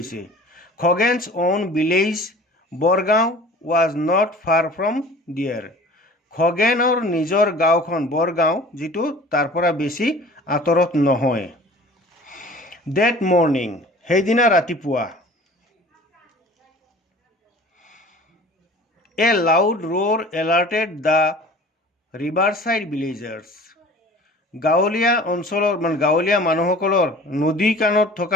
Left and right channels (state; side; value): normal; both; correlation 0.44